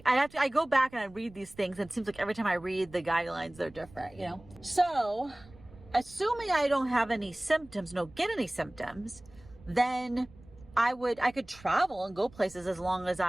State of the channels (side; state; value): right; noise; rumble, 22 dB below the sound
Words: go back and I read these things and it seems like every time I read the guidelines, they're different, you know? So assuming I don't have any symptoms, don't get any symptoms, then I could travel and go places as long as